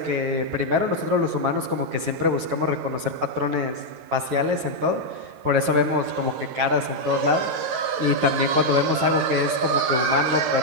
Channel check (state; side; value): late; left; 8.4 ms